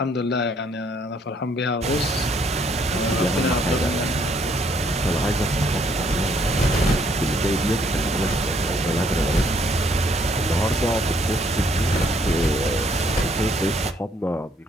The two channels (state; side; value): normal; both; correlation 0.67